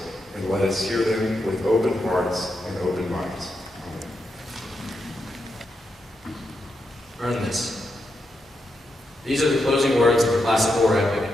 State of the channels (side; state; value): both; normal; correlation 0.84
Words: and let us hear them with open hearts and open minds. Earn this. These are the closing words of the classic war epic,